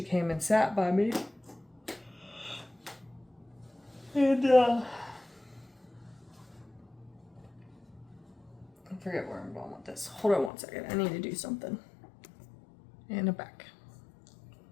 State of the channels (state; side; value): drops out; right; at 10.5 s